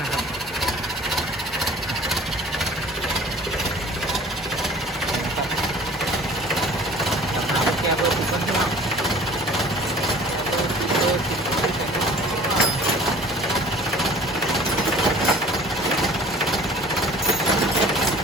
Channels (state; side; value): normal; both; correlation 0.46